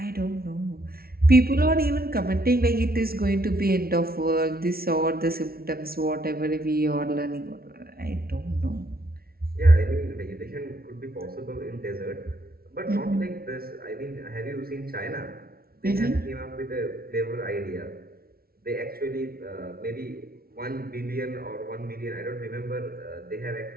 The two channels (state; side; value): late; left; 0.44 ms